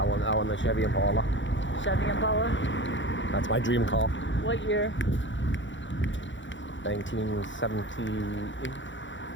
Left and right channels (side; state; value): right; late; 0.54 ms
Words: I want the Chevy Impala. Chevy Impala. That's my dream car. What year? 1978.